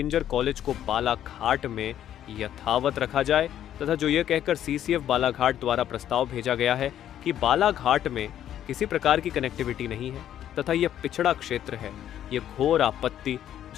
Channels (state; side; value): quieter; right; 10.9 dB